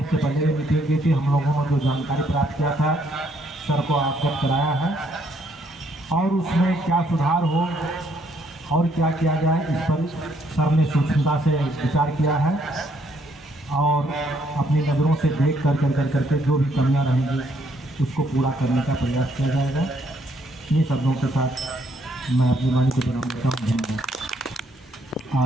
पहले भी मीटिंग की थी, हम लोगों ने जो जानकारी प्राप्त किया था सर को अवगत कराया है, और उसमें क्या सुधार हो और क्या किया जाए इस पर सर ने सूक्ष्मता से विचार किया है, और अपनी नज़रों से देख करके जो भी कमियां रहेंगी उसको पूरा करने का प्रयास किया जाएगा। इन्हीं शब्दों के साथ मैं अपनी वाणी को विराम देता हूँ।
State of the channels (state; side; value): normal; both; correlation 0.70